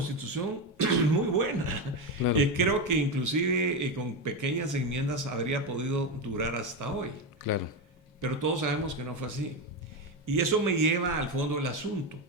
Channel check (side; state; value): both; normal; correlation 0.13